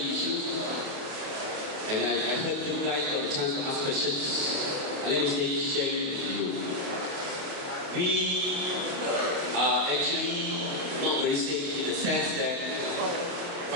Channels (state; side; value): late; left; 28 ms